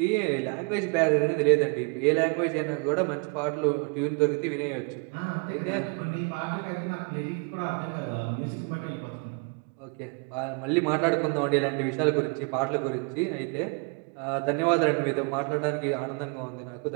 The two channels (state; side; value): quieter; left; 34.1 dB